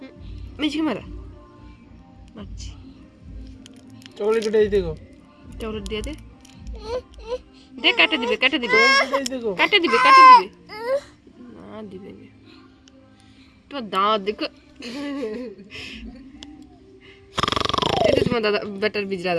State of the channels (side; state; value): both; identical; correlation 1.00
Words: মারছি চকলেট উঠাই দেখো চকলেট দিয়ে দে কাটে দিবে দেখো কাটে দিবে না দিবে না তো দাঁত দেখো এটা তোমার দাদা বেটার বিজরা